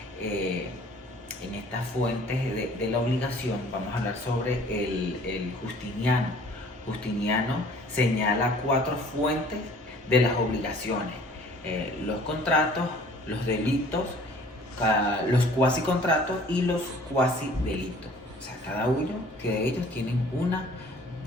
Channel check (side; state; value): both; normal; correlation 0.52